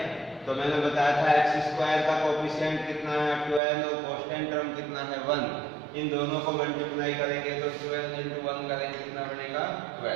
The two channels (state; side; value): drops out; left; at 3.6 s